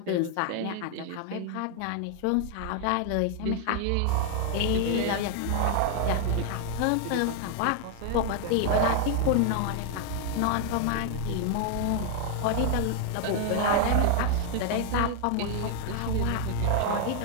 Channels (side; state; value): both; different; correlation 0.00